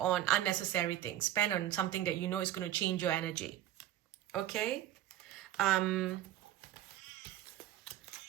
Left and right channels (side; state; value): left; quieter; 12.7 dB